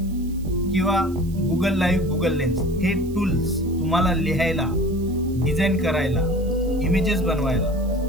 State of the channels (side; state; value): right; noise; hiss, 24 dB below the sound